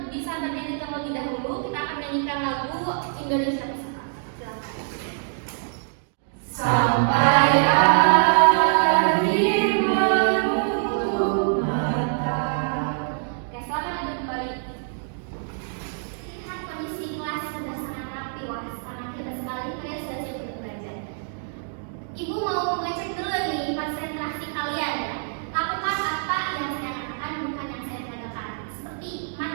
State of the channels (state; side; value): silent; left; digital silence